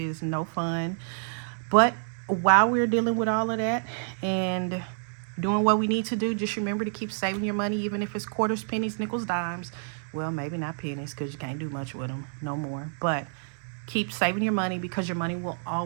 no fun. But while we're dealing with all of that and doing what we need to do, just remember to keep saving your money, even if it's quarters, pennies, nickels, dimes. Well, maybe not pennies, because you can't do much with them no more. But keep saving your money, because your money will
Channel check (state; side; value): silent; left; digital silence